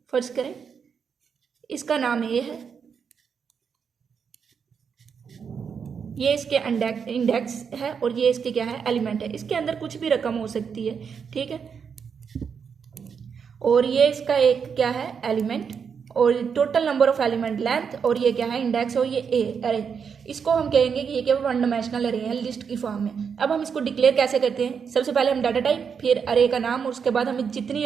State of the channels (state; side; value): quieter; left; 6.6 dB